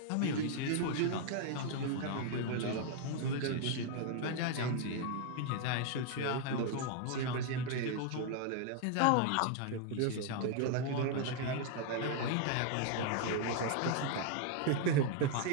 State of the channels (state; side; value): different; both; correlation 0.00